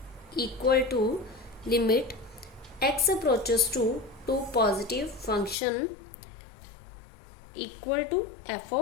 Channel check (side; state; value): right; drops out; at 5.6 s